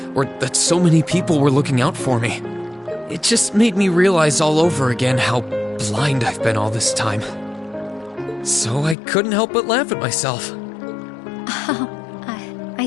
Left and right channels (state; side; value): drops out; right; at 9.0 s